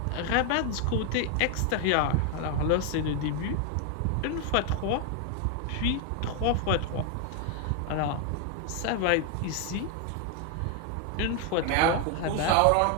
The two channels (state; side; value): different; both; correlation 0.00